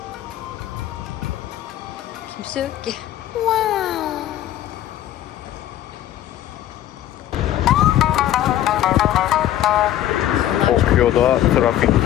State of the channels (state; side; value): quieter; right; 12.6 dB